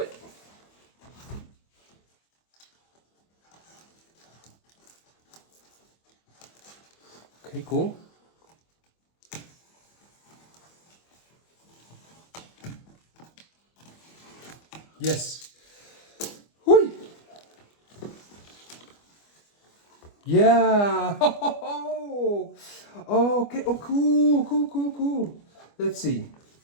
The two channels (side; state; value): right; late; 25 ms